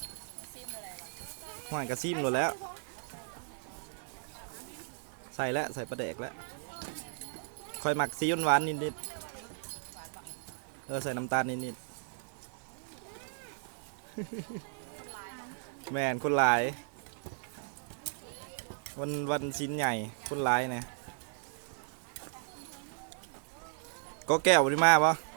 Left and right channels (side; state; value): left; silent; digital silence